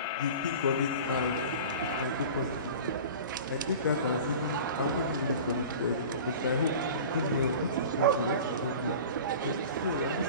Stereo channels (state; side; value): inverted; both; correlation -0.37